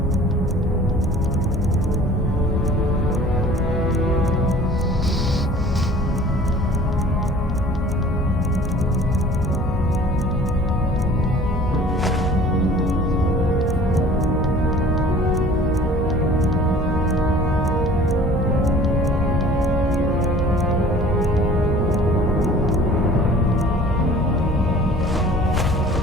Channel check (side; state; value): both; normal; correlation 0.48